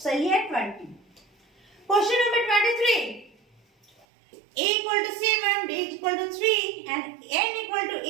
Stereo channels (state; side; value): drops out; left; at 4.0 s